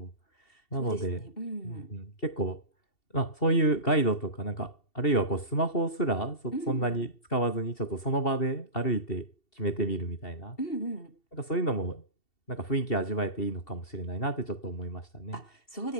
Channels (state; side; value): late; right; 2.7 ms